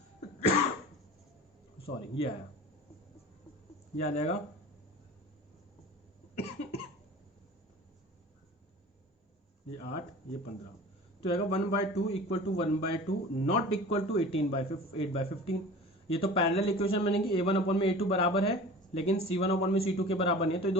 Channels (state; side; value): normal; both; correlation 0.39